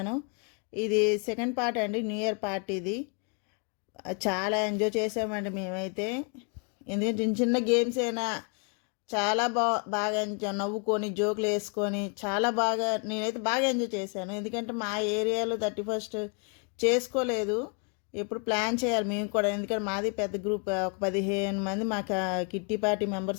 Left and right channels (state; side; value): quieter; right; 36.7 dB